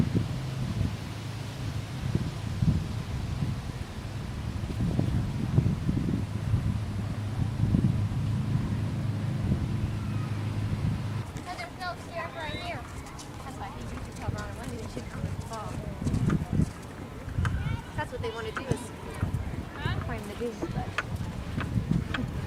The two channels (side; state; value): both; identical; correlation 1.00